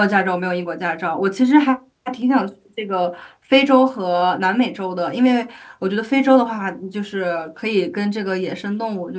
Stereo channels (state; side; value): identical; both; correlation 1.00